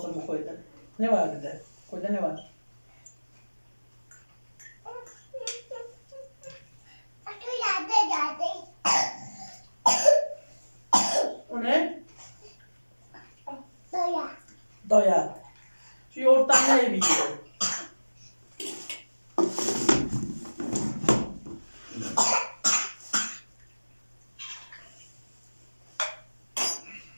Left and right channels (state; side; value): inverted; both; correlation -1.00